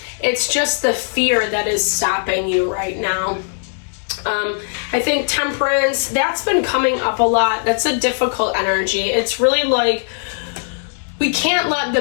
It's just the fear that is stopping you right now. I think Temperance, that's been coming up a lot. That's a difficult energy. It's really like, we can't let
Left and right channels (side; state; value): right; silent; digital silence